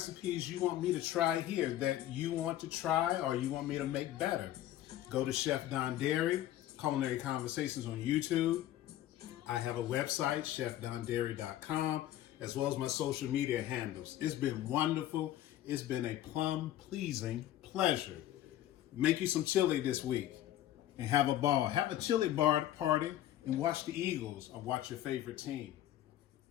you want me to try here that you want to try or you want me to make better. Go to Chef Dondari, Culinary Conversations on YouTube. I have a website, chefdondari.com, as well as my social media handles. It's been wonderful. It's been a plum-pleasing pleasure. Make you some chili this week and have a ball. Have a chili bar party and watch the Eagles or watch your favorite team.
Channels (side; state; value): right; quieter; 13.0 dB